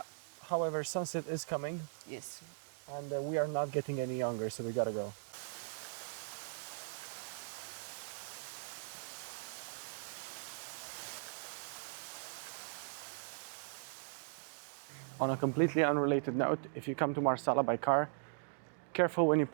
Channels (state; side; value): silent; left; digital silence